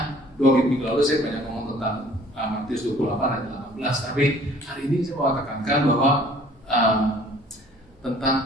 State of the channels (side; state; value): both; normal; correlation 0.54